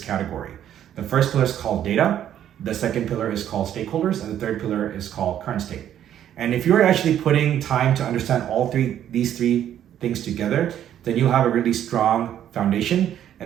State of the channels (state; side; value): quieter; left; 10.6 dB